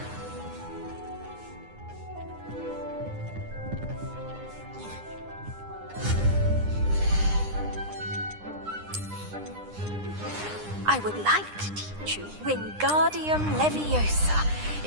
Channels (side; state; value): left; late; 9.8 ms